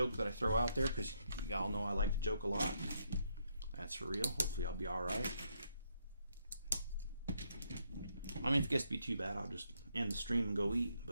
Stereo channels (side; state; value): both; inverted; correlation -0.75